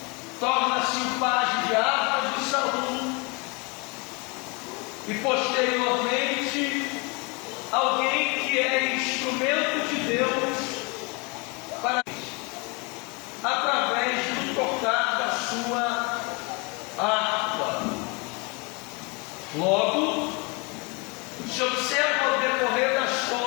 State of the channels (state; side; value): quieter; right; 30.0 dB